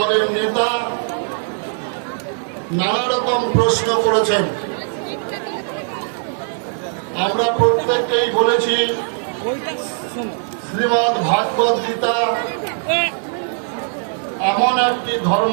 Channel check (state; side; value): silent; left; 56 dB below the other